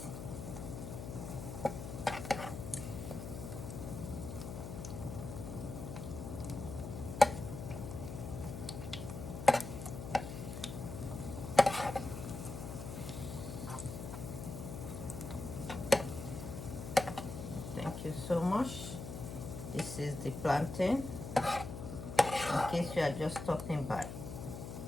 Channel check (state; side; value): noise; left; hum, 8 dB below the sound